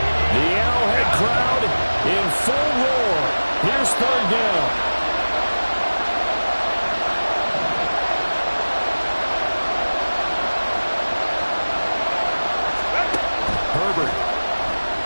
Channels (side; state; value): both; inverted; correlation -1.00